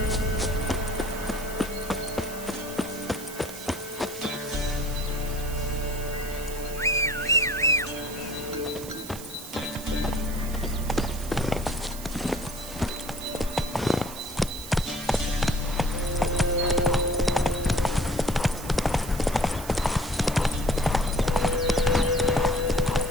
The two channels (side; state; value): right; noise; hiss, 12 dB below the sound